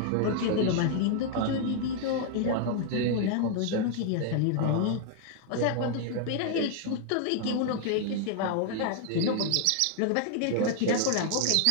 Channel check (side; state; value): both; different; correlation 0.00